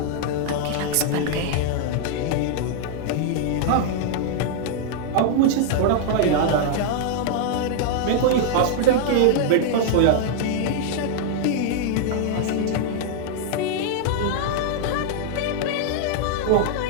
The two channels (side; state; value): both; different; correlation -0.01